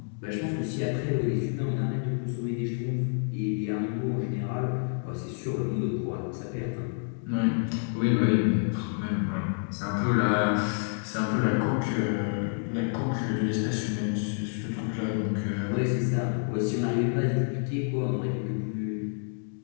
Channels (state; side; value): silent; right; 59 dB below the other